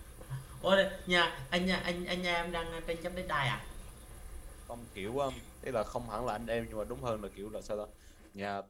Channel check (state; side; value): identical; both; correlation 1.00